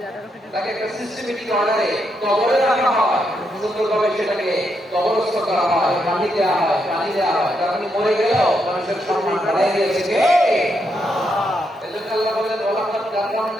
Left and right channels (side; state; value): both; normal; correlation 0.80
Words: তাকে একটা সিস্টেমেটিক অর্ডারে কবরে রাখা হয়, সুন্দরভাবে সেটাকে কবরস্থ করা হয়, পানি দেওয়া হয়, পানি দেওয়া হয়। কারণ মরে গেলেও মানুষের সম্মান বাড়াই দিয়েছে কে? আল্লাহ। এজন্য আল্লাহ বলেন, ওয়ালাকাদ